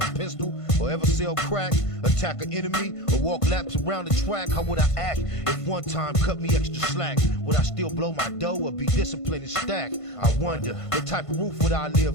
a pistol, or ever sell crack? Attack an enemy, or walk laps around the track? How would I act if one time cut me extra slack? Would I still blow my dough or be disciplined and stack? I wonder, what type of roof would I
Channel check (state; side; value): late; right; 1.5 ms